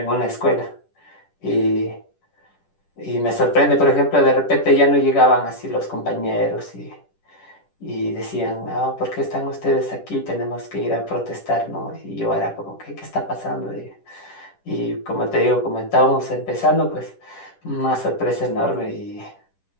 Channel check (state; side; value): late; right; 10 ms